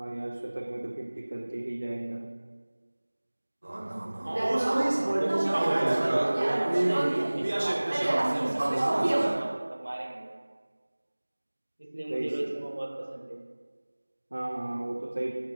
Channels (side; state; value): both; inverted; correlation -1.00